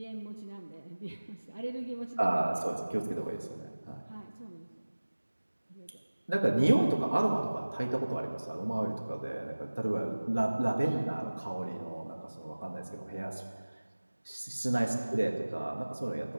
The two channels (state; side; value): inverted; both; correlation -1.00